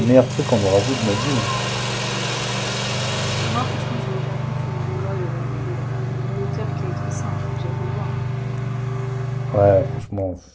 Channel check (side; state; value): both; identical; correlation 1.00